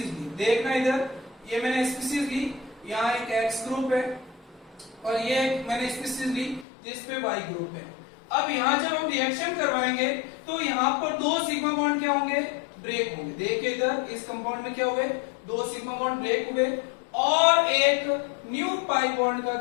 ली, देखना इधर ये मैंने स्पीसीज ली, यहाँ एक X ग्रुप है और ये मैंने स्पीसीज ली जिसपे Y ग्रुप है। अब यहाँ जब हम रिएक्शन करवाएंगे तो यहाँ पर दो सिग्मा बॉन्ड क्या होंगे, ब्रेक होंगे। देखिए इधर इस कंपाउंड में क्या हुए, दो सिग्मा बॉन्ड ब्रेक हुए और एक न्यू पाई बॉन्ड का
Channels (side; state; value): right; drops out; at 6.7 s